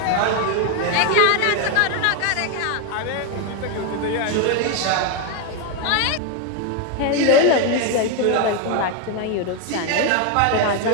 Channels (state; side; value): different; both; correlation 0.01